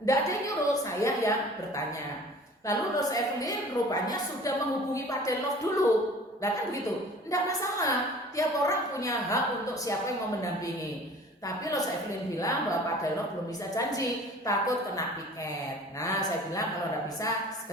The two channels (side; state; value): both; normal; correlation 0.45